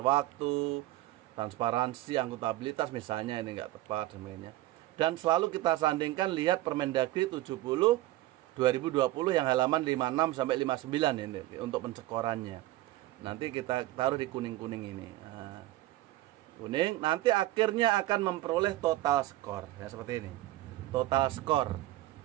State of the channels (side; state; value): left; quieter; 16.5 dB